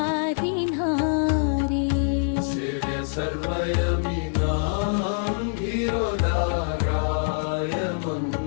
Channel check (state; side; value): silent; right; digital silence